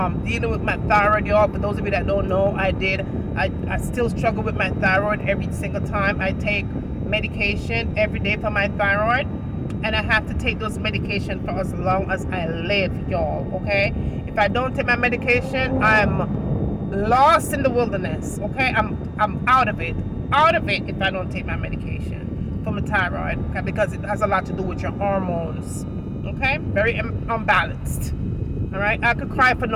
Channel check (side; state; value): both; identical; correlation 1.00